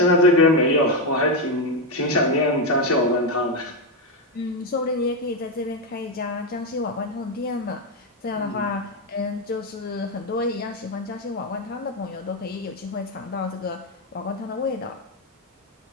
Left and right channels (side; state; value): both; normal; correlation 0.07